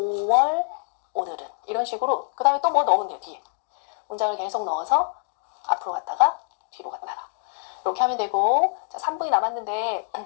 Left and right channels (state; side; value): silent; right; digital silence